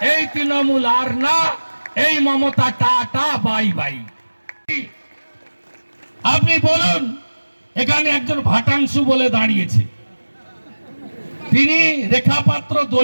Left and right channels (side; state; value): both; inverted; correlation -1.00